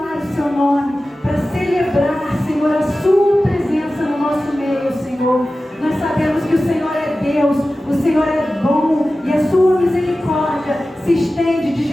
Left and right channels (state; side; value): normal; both; correlation 0.95